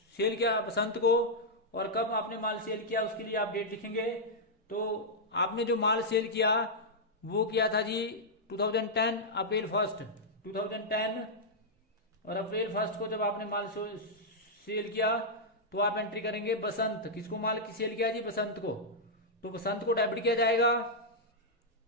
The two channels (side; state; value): both; normal; correlation -0.07